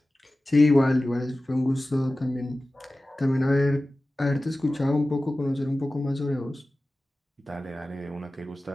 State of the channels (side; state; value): both; normal; correlation 0.96